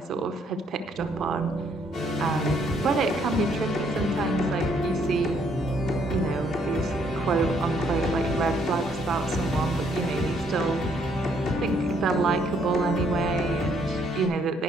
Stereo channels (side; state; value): both; normal; correlation 0.68